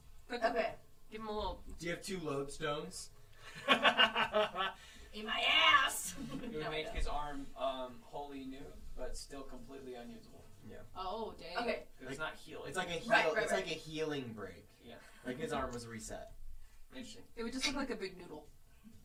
Quick, Okay. give him a little. Do you have 2 lodestones? In my ass. It would No, I make don't. his arm wholly new, but still completely unusable. Oh, dang. Okay. 'Cause it's not healing. It's like a Right, heal. right, It's right. like a healing break. Yeah. Like his arm was reset. Interesting. It would just look like a big noodle.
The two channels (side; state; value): both; identical; correlation 1.00